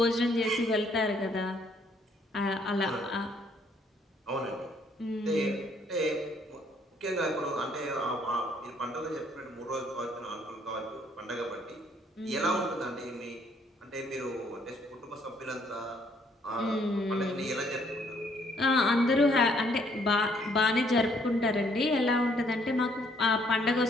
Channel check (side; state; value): both; normal; correlation 0.66